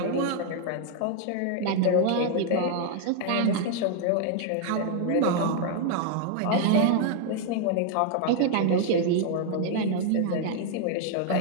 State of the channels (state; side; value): different; both; correlation 0.00